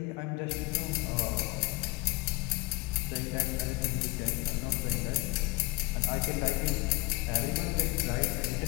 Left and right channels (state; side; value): quieter; right; 23.5 dB